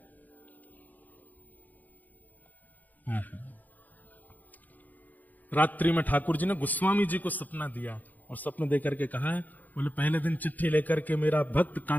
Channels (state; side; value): late; right; 0.082 ms